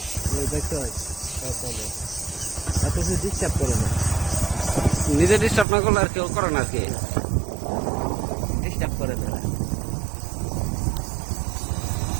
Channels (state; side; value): drops out; left; at 5.7 s